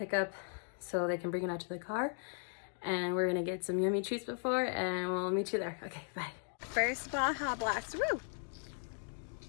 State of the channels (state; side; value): silent; right; 53 dB below the other